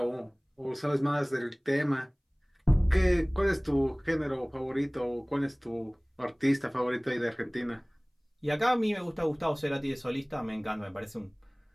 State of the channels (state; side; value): identical; both; correlation 1.00